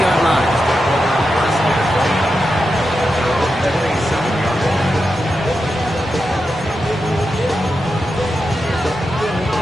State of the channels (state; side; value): normal; both; correlation 0.88